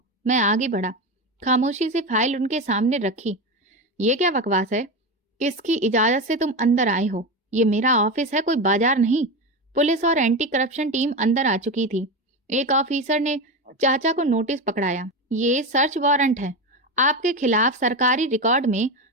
मैं आगे बढ़ा, खामोशी से फाइल उनके सामने रखी। ये क्या बकवास है? किसकी इजाजत से तुम अंदर आए हो? ये मेरा ऑफिस है, कोई बाजार नहीं। पुलिस और एंटी करप्शन टीम अंदर आ चुकी थी। एक ऑफिसर ने चाचा को नोटिस पकड़ाया। ये सर्च वारंट है, आपके खिलाफ सरकारी रिकॉर्ड में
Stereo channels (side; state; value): both; normal; correlation 0.19